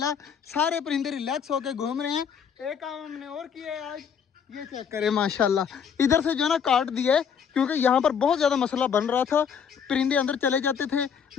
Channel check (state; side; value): quieter; right; 7.2 dB